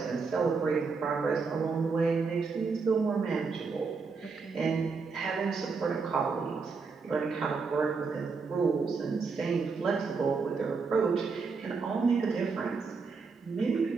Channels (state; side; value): quieter; left; 4.8 dB